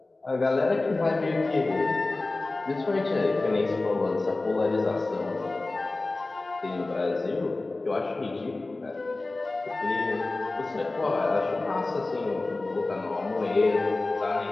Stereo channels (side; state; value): right; quieter; 3.1 dB